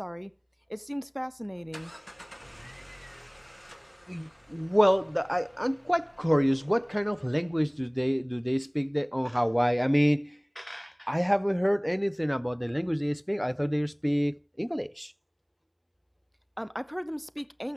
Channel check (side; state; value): both; identical; correlation 1.00